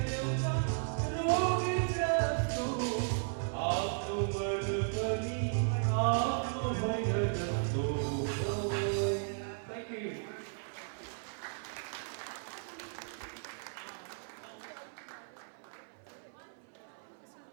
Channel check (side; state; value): left; silent; 54 dB below the other